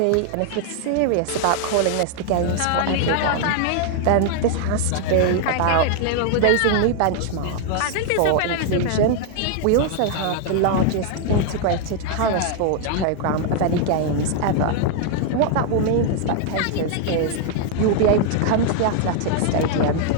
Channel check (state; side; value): different; both; correlation 0.00